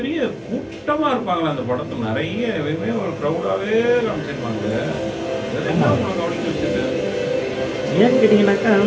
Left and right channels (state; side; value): identical; both; correlation 1.00